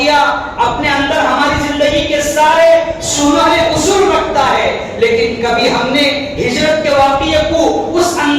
اپنے اندر ہماری زندگی کے سارے سنہرے اصول رکھتا ہے، لیکن کبھی ہم نے ہجرت کے واقعے کو اس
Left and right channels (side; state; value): both; identical; correlation 1.00